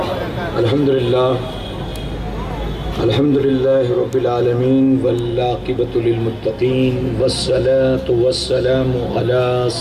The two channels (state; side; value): identical; both; correlation 1.00